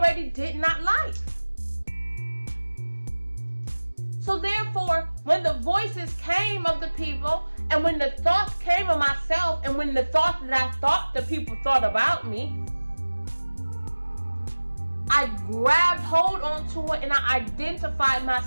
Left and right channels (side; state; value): both; inverted; correlation -1.00